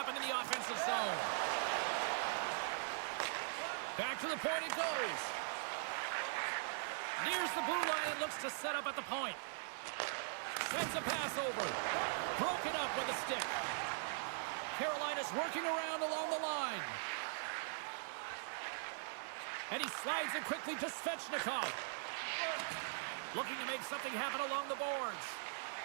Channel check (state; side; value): silent; left; digital silence